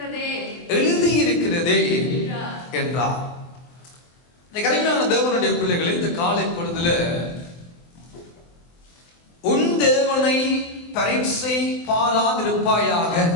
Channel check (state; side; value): late; right; 24 ms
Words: எழுதியிருக்கிறதே என்றார். கருமையான தேவனுடைய பிள்ளைகளை, இந்த காலை பொழுதுல உன் தேவனை பரீட்சை பாராதிருப்பாயாக,